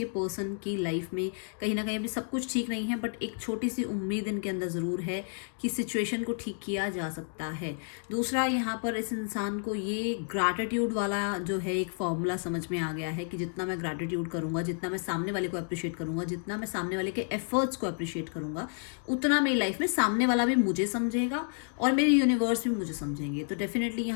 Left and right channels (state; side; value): silent; right; 57 dB below the other